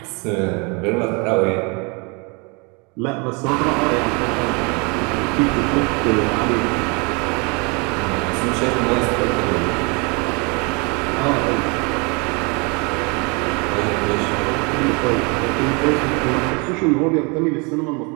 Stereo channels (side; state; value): left; quieter; 30.9 dB